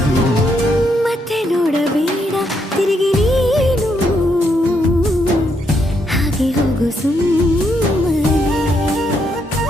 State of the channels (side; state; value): both; normal; correlation 0.76